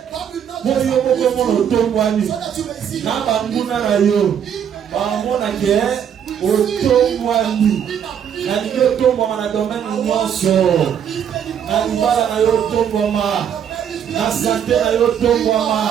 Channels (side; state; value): left; quieter; 8.6 dB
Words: po yo moko mona otombwani na banguna na yo bamona ke otombwani. Na liyo otombwama na domaine nyonso. Na libala na yo otombwama. Na santé na yo otombwama.